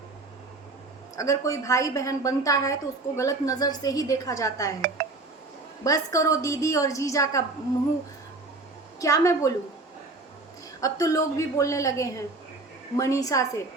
अगर कोई भाई बहन बनता है तो उसको गलत नज़र से ही देखा जाता है। बस करो दीदी और जीजा का मुंह, क्या मैं बोलूं। अब तो लोग भी बोलने लगे हैं मनीषा से,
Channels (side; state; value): left; quieter; 3.3 dB